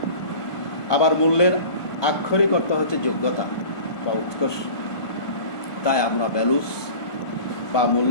আবার মূল্যের আক্ষরিক অর্থ হচ্ছে যোগ্যতা বা উৎকর্ষ। তাই আমরা ভ্যালুস বা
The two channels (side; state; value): right; late; 1.4 ms